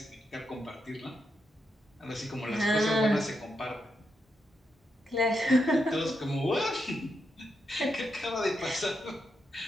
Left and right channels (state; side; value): normal; both; correlation 0.83